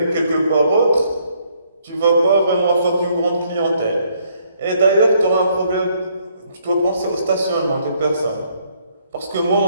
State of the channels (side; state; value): both; inverted; correlation -0.69